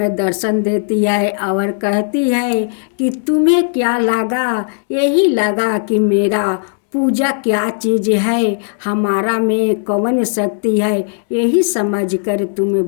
दर्शन देती है और कहती है कि तुम्हें क्या लगा, यही लगा कि मेरा पूजा क्या चीज़ है, हमारा में कौन शक्ति है, यही समझकर तुम्हें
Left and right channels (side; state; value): right; silent; digital silence